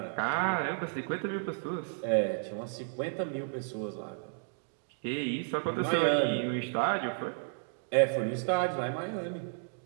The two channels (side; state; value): left; silent; digital silence